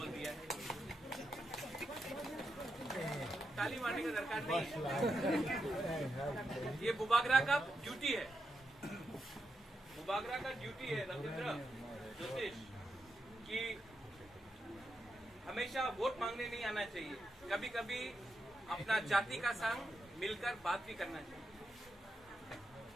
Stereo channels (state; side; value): normal; both; correlation 0.85